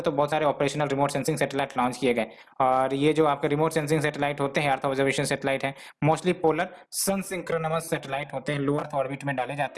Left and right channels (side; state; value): both; identical; correlation 1.00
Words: बहुत सारे operational remote sensing satellite launch किए गए। और ये जो आपके रिमोट सेंसिंग सैटेलाइट होते हैं, अर्थ ऑब्जर्वेशन सैटेलाइट है, mostly polar sun synchronous satellite होते हैं, लो अर्थ ऑर्बिट में डाले